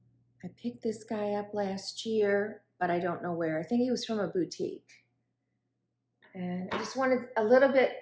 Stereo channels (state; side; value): identical; both; correlation 1.00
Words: I picked this guy up last year, but I don't know where. I think he was from a boutique. And I just wanted a little